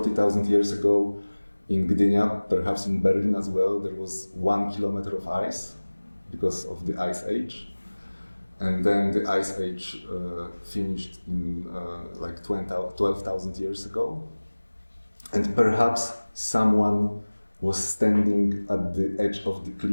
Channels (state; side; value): inverted; both; correlation -1.00